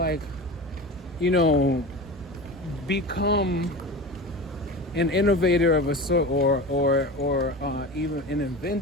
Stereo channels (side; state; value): both; normal; correlation 0.30